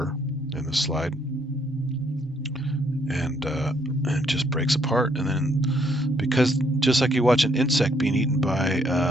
in the slide, and it just breaks apart. And then, because just like you watch an insect being eaten by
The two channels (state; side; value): normal; both; correlation 0.69